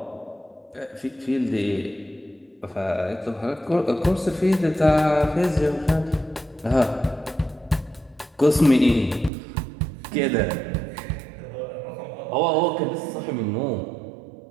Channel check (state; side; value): drops out; left; at 9.3 s